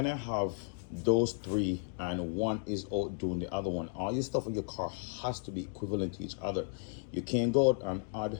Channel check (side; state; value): right; silent; 55 dB below the other